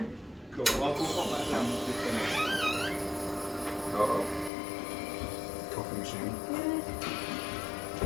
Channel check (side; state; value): right; drops out; at 4.5 s